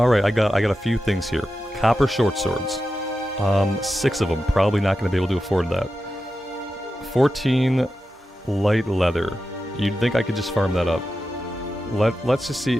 I got a few things here. Copper short swords. 6 of them. Probably not going to be able to afford that. 14 light leather. You'd think I could just farm that up. Let's just see.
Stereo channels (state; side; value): normal; both; correlation 0.91